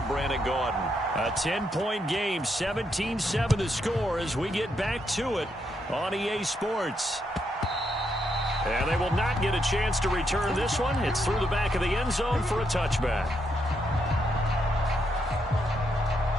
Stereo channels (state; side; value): normal; both; correlation 0.79